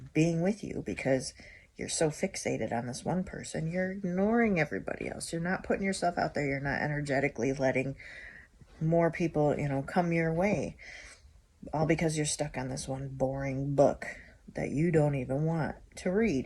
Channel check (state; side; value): identical; both; correlation 1.00